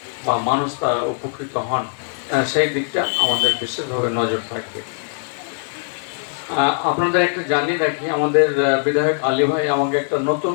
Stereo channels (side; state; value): right; silent; digital silence